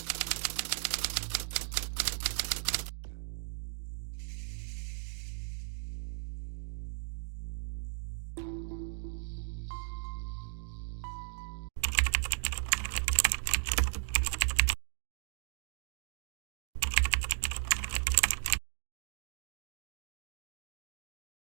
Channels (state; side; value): silent; left; digital silence